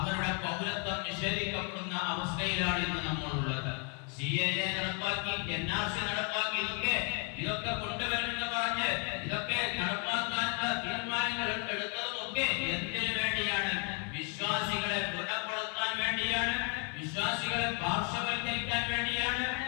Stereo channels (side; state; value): right; quieter; 38.3 dB